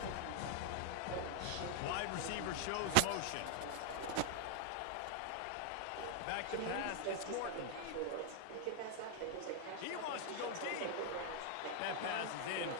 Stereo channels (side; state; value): both; different; correlation 0.00